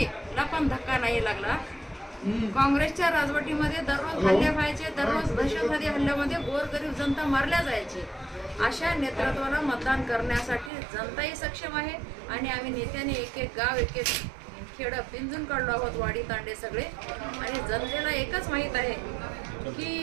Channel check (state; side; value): drops out; left; at 10.7 s